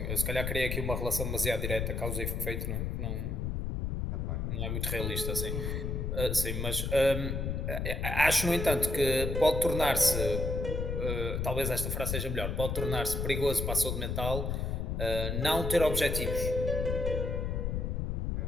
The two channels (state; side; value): noise; left; rumble, 1 dB below the sound